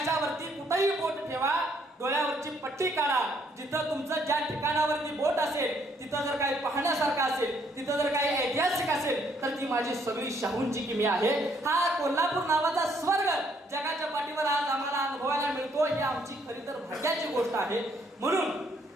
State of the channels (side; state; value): both; normal; correlation 0.68